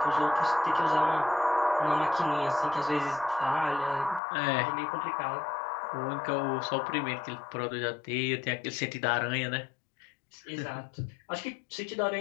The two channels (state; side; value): drops out; right; at 4.2 s